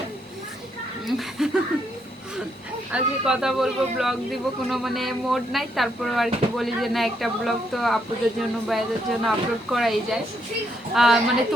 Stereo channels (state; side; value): normal; both; correlation 0.75